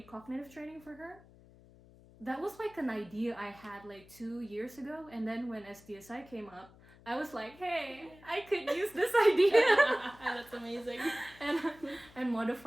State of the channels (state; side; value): noise; left; hum, 24 dB below the sound